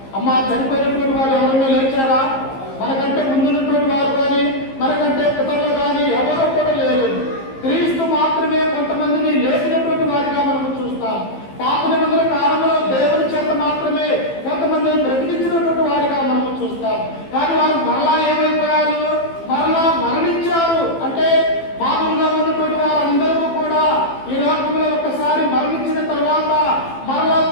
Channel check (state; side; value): late; right; 15 ms